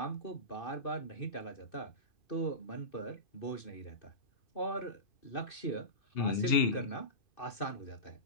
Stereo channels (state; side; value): late; right; 2.6 ms